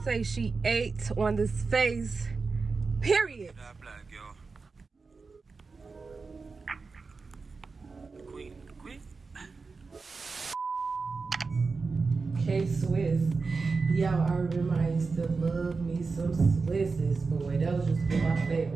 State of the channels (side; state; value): left; quieter; 4.4 dB